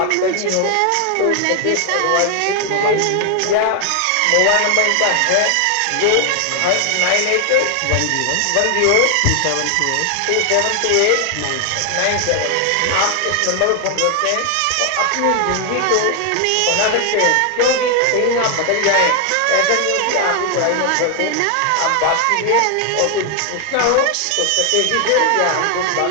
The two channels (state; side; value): different; both; correlation 0.00